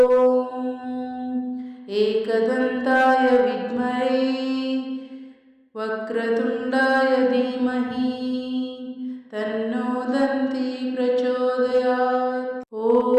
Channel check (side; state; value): both; identical; correlation 1.00